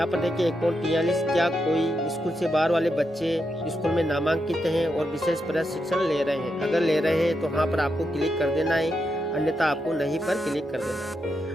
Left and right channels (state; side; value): normal; both; correlation 0.84